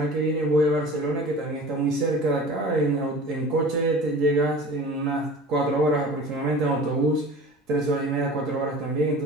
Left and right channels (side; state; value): both; normal; correlation 0.40